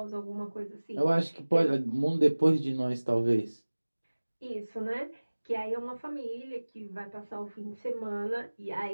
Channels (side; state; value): both; inverted; correlation -1.00